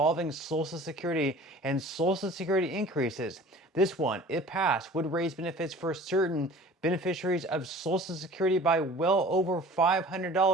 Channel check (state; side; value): normal; both; correlation 0.45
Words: Social Security and Social Security increases. This one, if passed, would raise benefits for certain beneficiaries of Social Security by well over